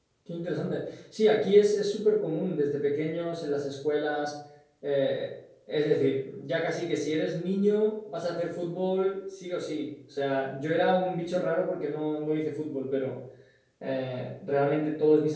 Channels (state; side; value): identical; both; correlation 1.00